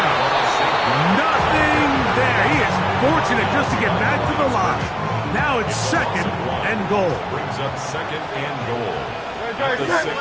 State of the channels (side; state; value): both; identical; correlation 1.00